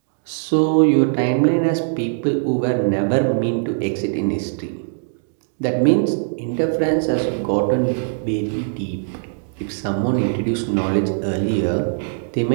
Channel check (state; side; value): silent; left; digital silence